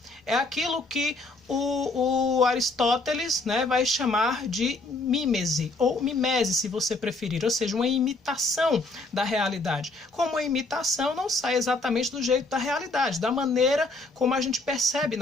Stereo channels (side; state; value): right; quieter; 3.0 dB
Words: É aquilo que o Aristóteles, né, vai chamar de mímese, ou mimese, se você preferir, ou seja, uma imitação da realidade. Como a imitação não sai exatamente do jeito da realidade, da maneira como a gente percebe